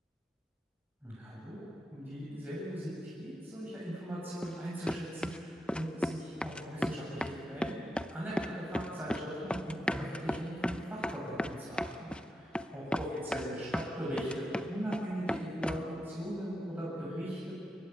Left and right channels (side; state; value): both; normal; correlation 0.85